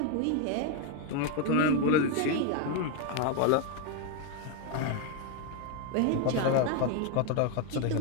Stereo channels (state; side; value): different; both; correlation 0.01